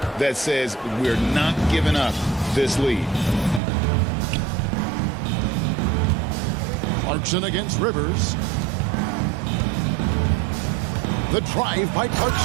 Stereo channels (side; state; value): left; drops out; at 3.6 s